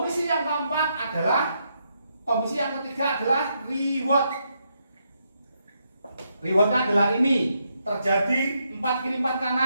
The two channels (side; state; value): both; inverted; correlation -0.79